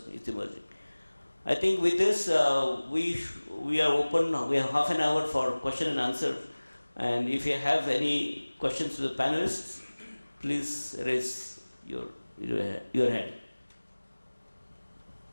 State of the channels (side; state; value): both; inverted; correlation -1.00